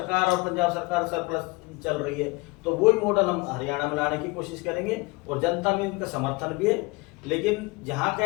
और पंजाब सरकार सरप्लस चल रही है, तो वही मॉडल हम हरियाणा में लाने की कोशिश करेंगे, और जनता में इनका समर्थन भी है। लेकिन जहां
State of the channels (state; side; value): quieter; right; 25.0 dB